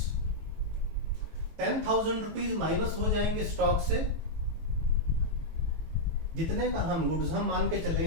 10,000 rupees minus हो जाएंगे स्टॉक से, जितने का हम गुड्स हम मान के चले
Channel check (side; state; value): left; late; 18 ms